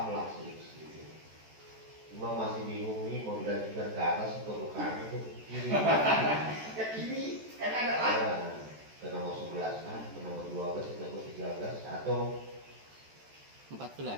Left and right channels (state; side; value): late; left; 14 ms